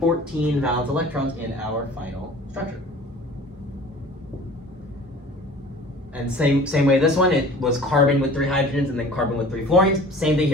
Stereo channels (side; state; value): both; normal; correlation 0.44